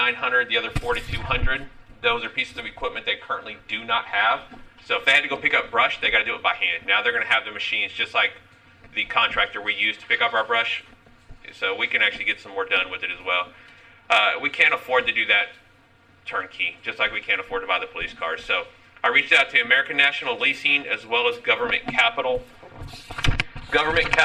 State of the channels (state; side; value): identical; both; correlation 1.00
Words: the other $4,200. Those are pieces of equipment they currently do not have. So if they had to go pick up brush, they got to do it by hand. Now they're going to have the machines just like the contractor we use to pick up our brush. So we can actually get some more done with it as well. We can't afford to do that turnkey, just like we can't afford to buy the police cars. So I reached out to American National Leasing as well as Government Capital. Government